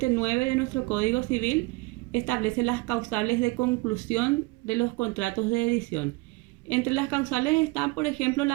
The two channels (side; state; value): left; quieter; 24.0 dB